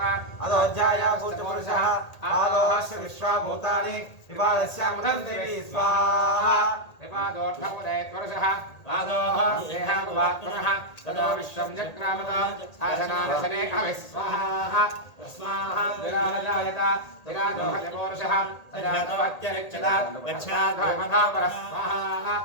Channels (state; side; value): late; right; 1.8 ms